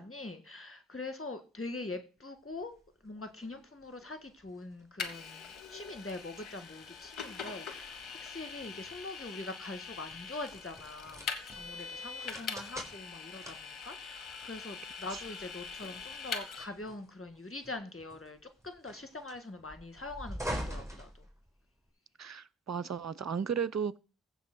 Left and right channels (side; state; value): both; normal; correlation 0.41